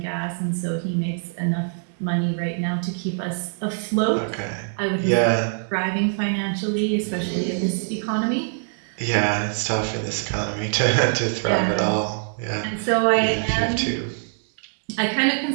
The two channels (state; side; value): silent; left; 63 dB below the other